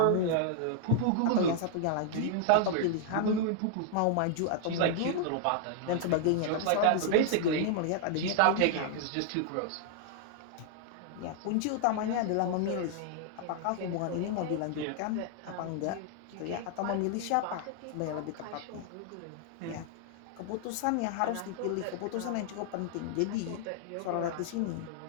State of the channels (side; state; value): both; different; correlation 0.00